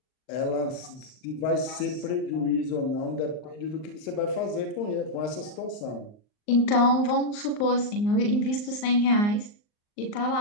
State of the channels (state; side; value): late; right; 39 ms